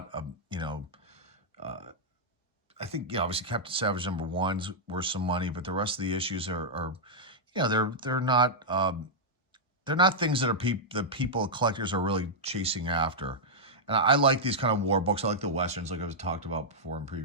a, I think, obviously Captain Savage #1's worth some money, but the rest of the issues are they're not things that collectors are really chasing after. And I like these kind of war books. I like the Westerns, like I've talked about before in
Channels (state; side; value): normal; both; correlation -0.07